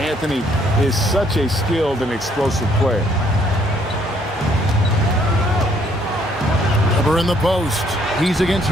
is such a skilled and explosive player. Weber in the post. He's against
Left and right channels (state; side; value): normal; both; correlation 0.66